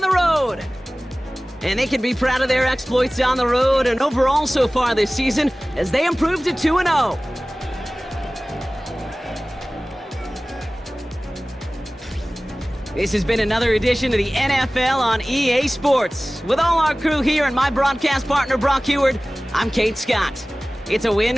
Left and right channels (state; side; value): normal; both; correlation 0.98